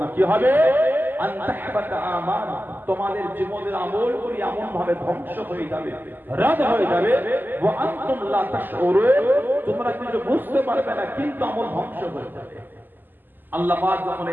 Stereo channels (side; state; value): left; late; 0.090 ms